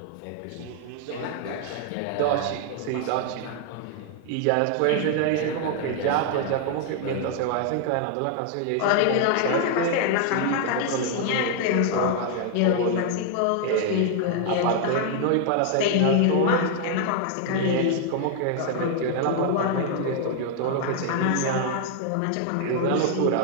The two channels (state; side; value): different; both; correlation 0.00